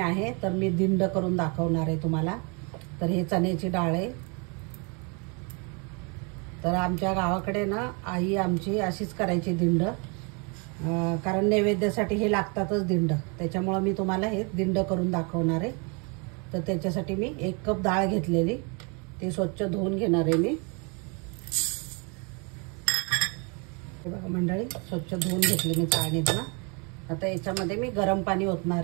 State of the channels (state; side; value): quieter; left; 33.7 dB